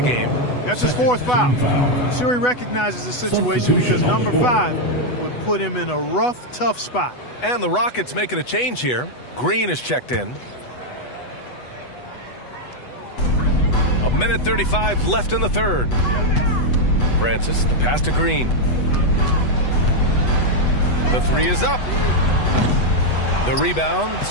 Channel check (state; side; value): late; right; 8.1 ms